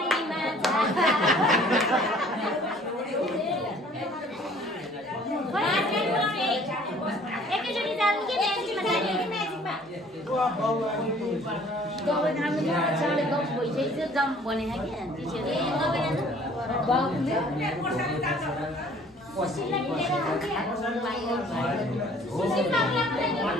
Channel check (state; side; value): normal; both; correlation 0.54